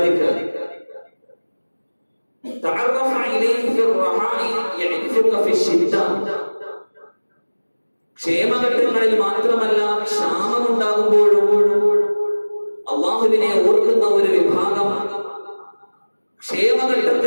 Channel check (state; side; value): inverted; both; correlation -1.00